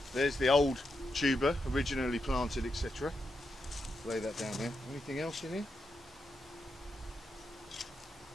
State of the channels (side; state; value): both; normal; correlation 0.85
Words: There's the old tuber, originally planted, etc. Lay that down there. Anything else in here?